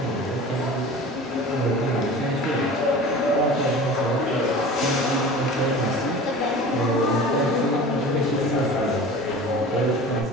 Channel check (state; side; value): normal; both; correlation 0.38